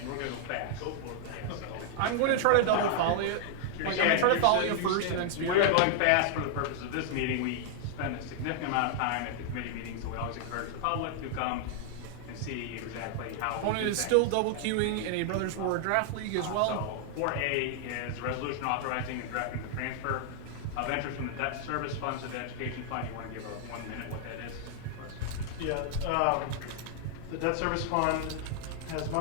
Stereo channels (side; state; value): both; different; correlation 0.00